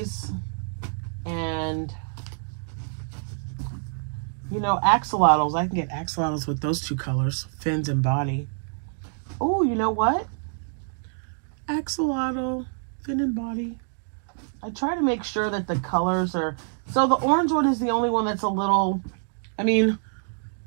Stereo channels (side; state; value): left; silent; 61 dB below the other